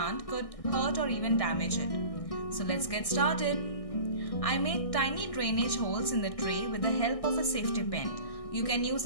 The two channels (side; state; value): right; late; 1.6 ms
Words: could hurt or even damage it. So let's get started. I made tiny drainage holes in the tray with the help of a safety pin. You can use